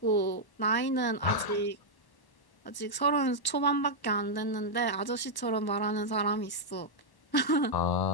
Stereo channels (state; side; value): late; right; 1.1 ms